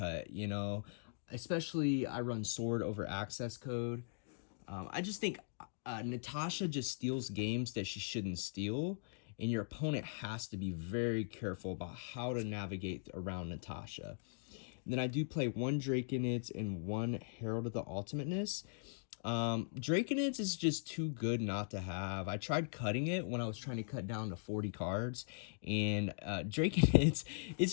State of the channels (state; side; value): silent; right; digital silence